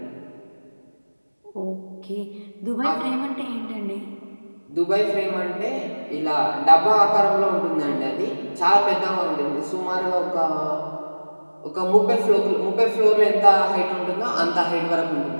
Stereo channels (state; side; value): inverted; both; correlation -1.00